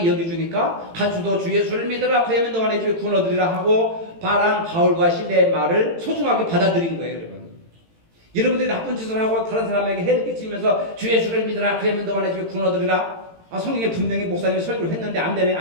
여겨주니까 간수도 주 예수를 믿으라 그러면 너와 내 집에 구원 얻으리라 하고 바울과 실레의 말을 소중하게 받아들인 거예요. 여러분. 여러분들이 나쁜 짓을 하고 다른 사람에게 해를 끼치면서 주 예수를 믿으라 그러면 너와 내 집에 구원 얻으리라 성경에 분명히 목사님이 설교를 했는데 안 되네.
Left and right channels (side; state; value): left; late; 18 ms